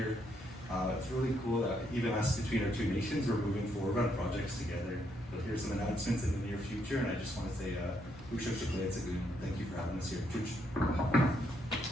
It's really cool that even us between our two nations, we're moving forward on projects together. You'll hear some announcements in the near future, and I just want to say, thank you for having us here.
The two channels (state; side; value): normal; both; correlation 0.75